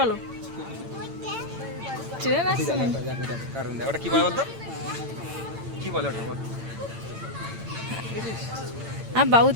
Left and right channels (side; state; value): left; late; 8.9 ms